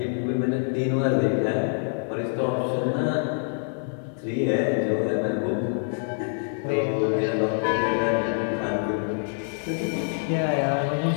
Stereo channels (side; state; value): right; silent; 58 dB below the other